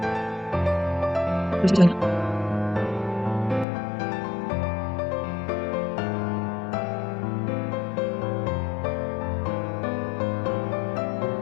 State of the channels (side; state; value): right; drops out; at 3.7 s